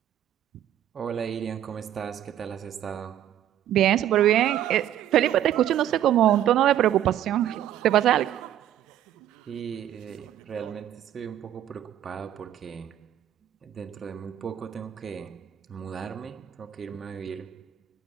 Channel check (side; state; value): left; quieter; 11.3 dB